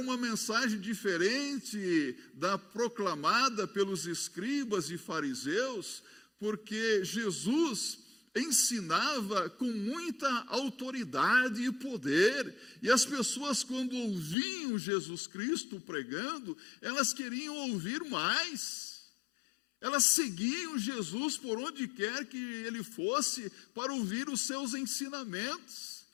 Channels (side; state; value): right; drops out; at 14.4 s